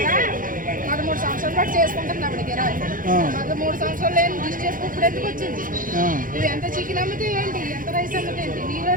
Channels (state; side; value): late; left; 0.40 ms